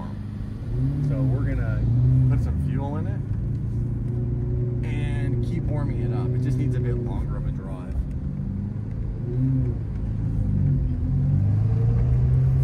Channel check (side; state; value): both; identical; correlation 1.00